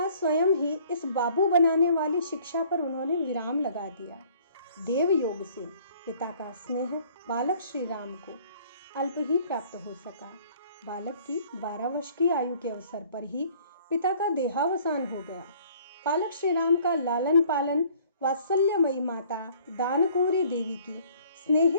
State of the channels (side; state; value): both; inverted; correlation -0.56